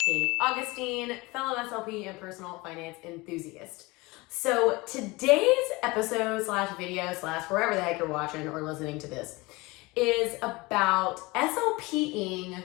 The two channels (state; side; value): quieter; right; 23.2 dB